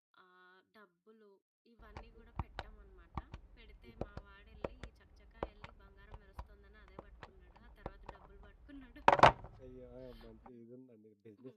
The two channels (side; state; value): both; identical; correlation 1.00